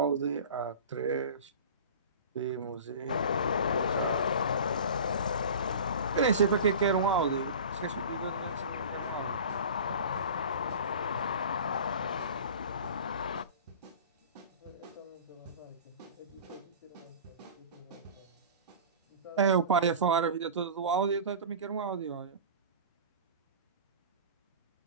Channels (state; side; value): inverted; both; correlation -0.36